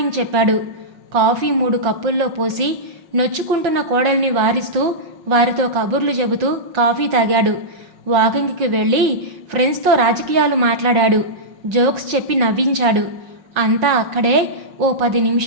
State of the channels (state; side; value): late; left; 5.5 ms